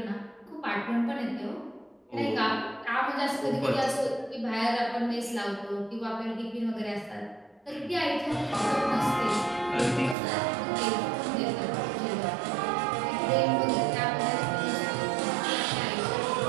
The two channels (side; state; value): left; drops out; at 10.2 s